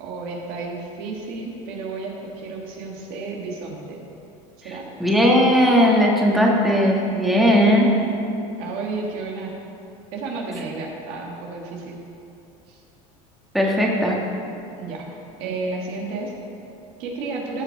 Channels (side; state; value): both; normal; correlation 0.52